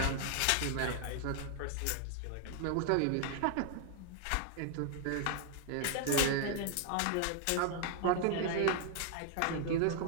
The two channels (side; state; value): both; different; correlation 0.00